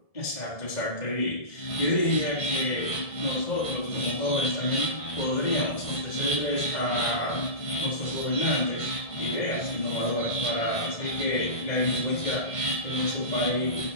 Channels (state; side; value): late; right; 1.7 ms